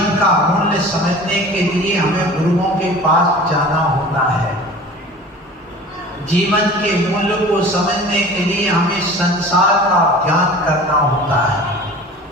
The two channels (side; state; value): both; normal; correlation 0.41